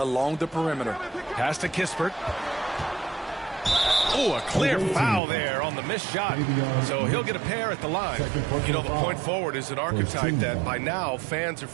the perimeter. Pass to Kispert. Oh, a clear foul there on the missed shot. So he'll get a pair at the line. You know, the point forward is an archetype that by now fans are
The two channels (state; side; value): drops out; left; at 5.2 s